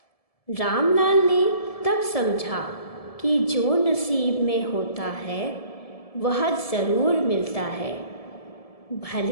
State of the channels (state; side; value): late; right; 1.7 ms